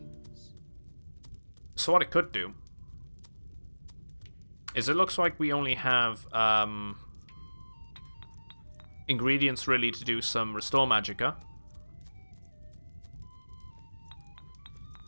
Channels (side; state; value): both; inverted; correlation -1.00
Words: So what it could do is it looks like we only have ingredients really to do some restore magicka.